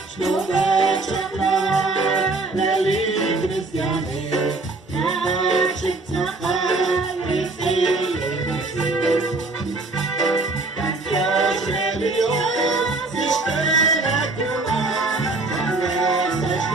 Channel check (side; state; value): left; quieter; 3.3 dB